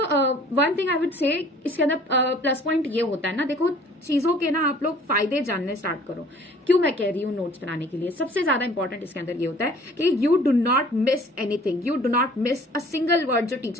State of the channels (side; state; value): both; normal; correlation 0.52